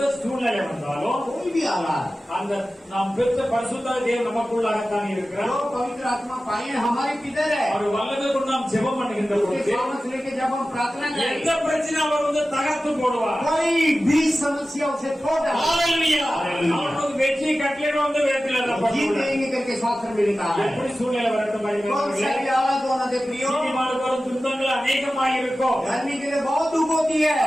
சூழ்நிலை வந்தாலும் कोई भी हालात, அந்த நாம் பெற்ற பரிசுத்த தேவன் நமக்குள்ளாகத்தான் இருக்கிறார். जो पवित्र आत्मा पाए हैं, हमारे किधर है? அவர் வல்லமை கொண்டு நாம் ஜெபம் பண்ணுகின்ற उसके பொழுது सामर्थ लेके जब हम प्रार्थना எந்த करें, பிரச்சனை அவர் வந்து தகர்த்து போடுவார். कोई भी समस्या उसे छोड़ देगा। ஹalleluya. அவருக்கு வெற்றி கட்டளை வந்து வேதத்தில் जीत எழுதப்பட்டுள்ளது. देंगे करके शास्त्र में लिखा है। எப்படி சூழ்நிலை வரட்டும் कौन सा भी हालात होना दे प्रियो, நீதிமானுக்கு வரும் துன்பங்கள் அநேகமாக இருக்கும். धर्मी के लिए बहुत दुख होती है।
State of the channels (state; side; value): normal; both; correlation 0.95